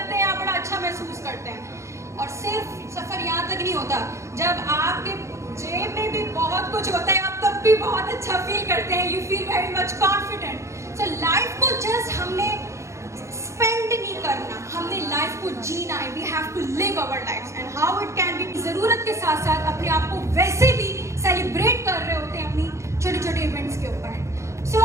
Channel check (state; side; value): late; left; 0.14 ms